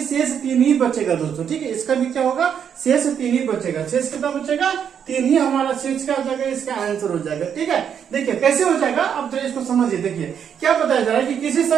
शेष 3 ही बचेगा दोस्तों। ठीक है, इसका भी क्या होगा, शेष 3 ही बचेगा। शेष कितना बचेगा, 3 ही हमारा शेष क्या हो जाएगा, इसका आंसर हो जाएगा। ठीक है, देखिए कैसे हो जाएगा, अब जरा इसको समझिए। देखिए क्या बताया जा रहा है कि किसी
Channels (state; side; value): quieter; left; 8.1 dB